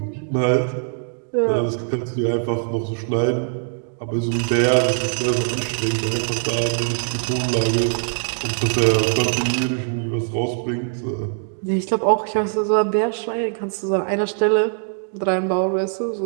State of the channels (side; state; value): left; silent; digital silence